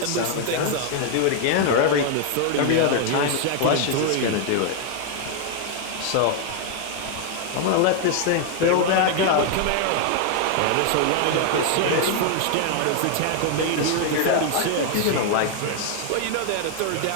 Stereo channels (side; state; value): both; different; correlation 0.00